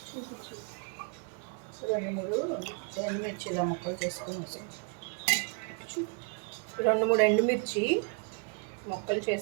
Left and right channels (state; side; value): quieter; left; 37.2 dB